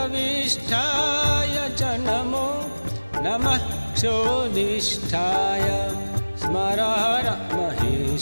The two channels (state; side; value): inverted; both; correlation -1.00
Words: वसिष्ठाय च नमो नमः क्षोदिष्ठाय स्मरहर